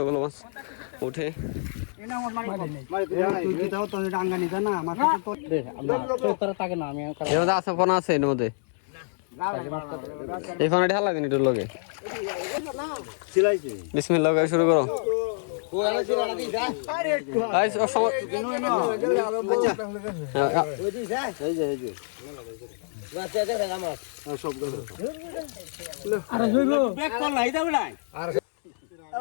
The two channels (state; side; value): silent; right; digital silence